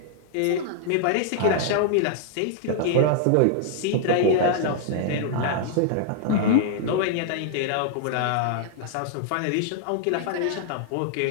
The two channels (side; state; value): both; different; correlation -0.01